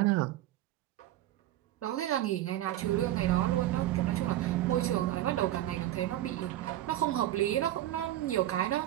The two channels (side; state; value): left; quieter; 14.0 dB